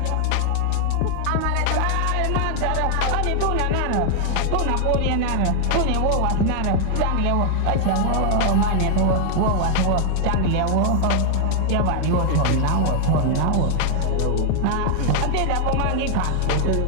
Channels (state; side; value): different; both; correlation 0.00